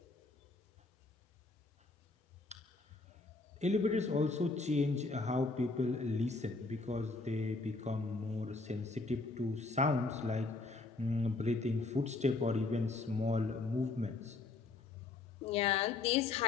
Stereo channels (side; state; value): right; quieter; 3.6 dB